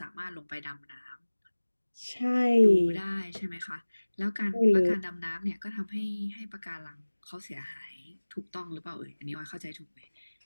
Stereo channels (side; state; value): both; inverted; correlation -1.00